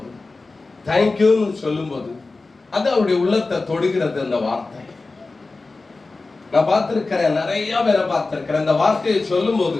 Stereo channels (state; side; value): quieter; right; 3.6 dB